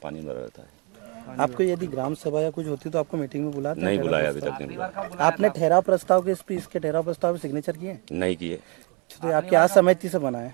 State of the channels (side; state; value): left; quieter; 32.6 dB